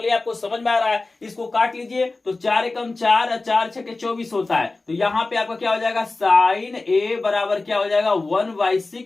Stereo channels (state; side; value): quieter; right; 3.4 dB